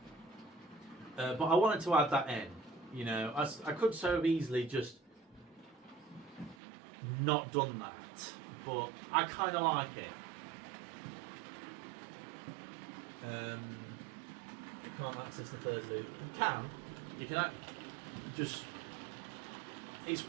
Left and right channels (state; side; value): drops out; left; at 6.6 s